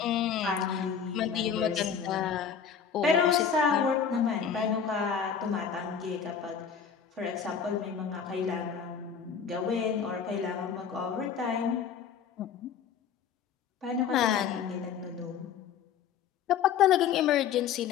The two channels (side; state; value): right; quieter; 7.3 dB